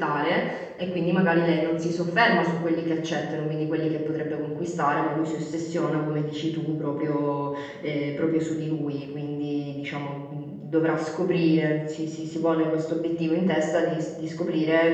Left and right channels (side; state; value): both; identical; correlation 1.00